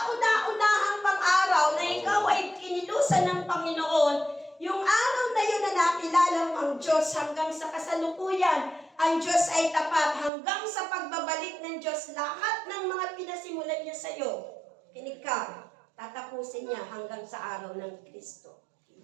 pang-araw na ikaw ay kinilusan ng Panginoon, yung araw na yun na nakilala mo ang Diyos hanggang sa kasalukuyan, ang Diyos ay tapat hanggang sa pagbabalik ng Diyos, lahat ng mga pinasimulan niya sa iyo, kinig ka, tatapusin niya hanggang sa araw ng Kristo.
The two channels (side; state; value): left; drops out; at 10.3 s